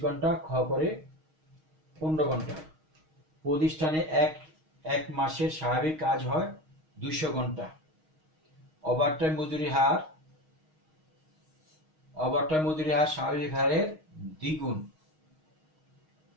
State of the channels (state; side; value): late; left; 6.4 ms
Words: ঘন্টা, খ করে 15 ঘন্টা। প্রতিষ্ঠানে এক মাসের স্বাভাবিক কাজ হয় 200 ঘন্টা। ওভারটাইম মজুরি হার স্বাভাবিক হারের দ্বিগুণ।